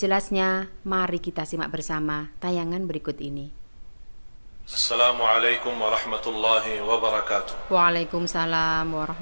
mari kita simak bersama tayangan berikut ini. Assalamualaikum warahmatullahi wabarakatuh. Waalaikumsalam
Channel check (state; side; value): inverted; both; correlation -1.00